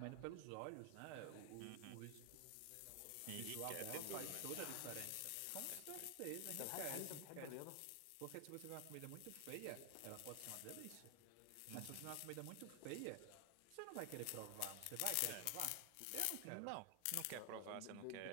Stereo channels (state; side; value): different; both; correlation 0.00